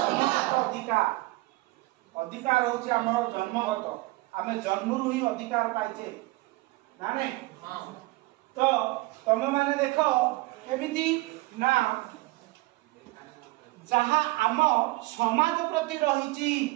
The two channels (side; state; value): left; quieter; 21.3 dB